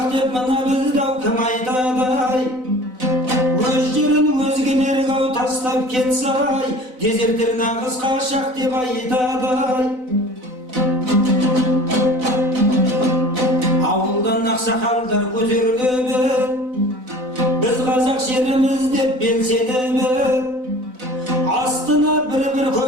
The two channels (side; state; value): left; late; 4.0 ms